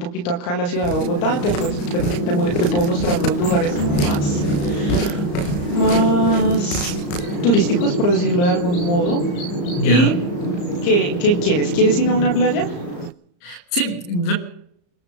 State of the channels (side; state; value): right; late; 34 ms